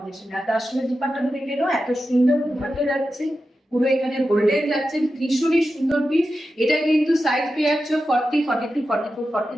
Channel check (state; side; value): normal; both; correlation 0.91